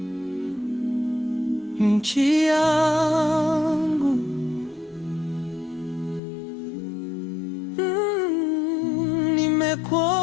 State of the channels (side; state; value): right; drops out; at 6.2 s